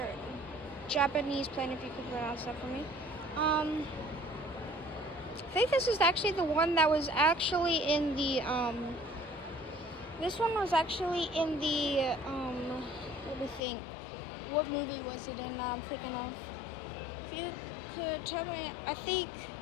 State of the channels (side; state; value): right; drops out; at 13.6 s